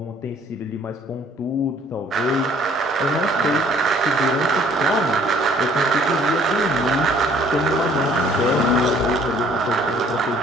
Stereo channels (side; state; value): both; normal; correlation 0.58